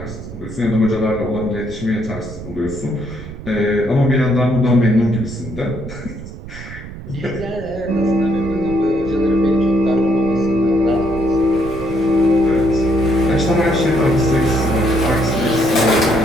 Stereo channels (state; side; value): noise; right; rumble, 13 dB below the sound